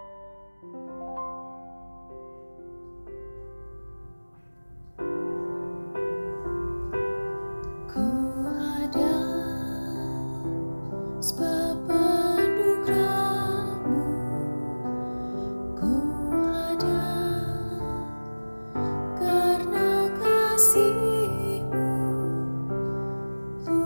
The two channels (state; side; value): inverted; both; correlation -1.00